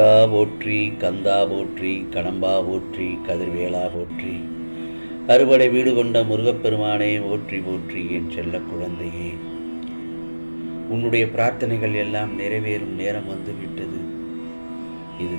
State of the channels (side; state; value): both; inverted; correlation -1.00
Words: போற்றி, கந்தா போற்றி, கடம்பா போற்றி, கதிர்வேலா போற்றி. அறுபடை வீடு கொண்ட முருகப்பெருமானே போற்றி போற்றி. என் செல்ல குழந்தையே, உன்னுடைய பிரார்த்தனைகள் எல்லாம் நிறைவேறும் நேரம் வந்துவிட்டது. இது